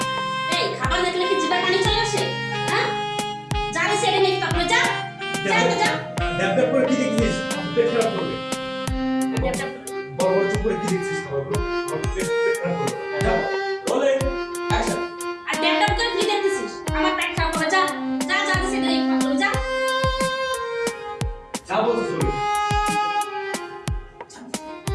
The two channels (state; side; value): identical; both; correlation 1.00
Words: এই খাবার দেখলে কি জিভে পানি চলে আসে হ্যাঁ জানি সেটা নিয়ে তারপর যা যা তো যা ড্যাব ড্যাব করে কি দেখছিস? পেট খারাপ করবে। বড় বড় চুপ করে কি দেখছিস খাবারগুলো? পেট খারাপ করবে। যাও। Rolling action. আর ড্যাপ করে কি দেখতেছিস আমার পেট খারাপ করে যা যা জানি সেটা নিয়ে তারপর যা যা বলছিস বলো।